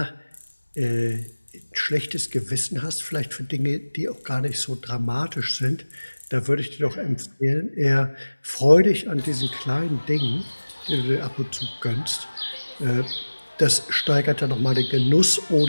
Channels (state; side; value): inverted; both; correlation -1.00